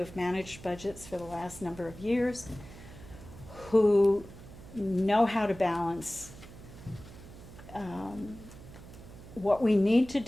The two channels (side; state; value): right; noise; hum, 17 dB below the sound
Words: managed budgets for the last number of years who know how to balance what we need to